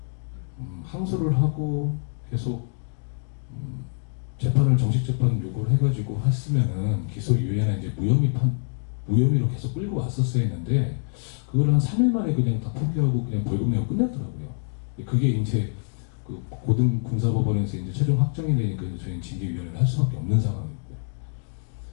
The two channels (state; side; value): silent; right; 61 dB below the other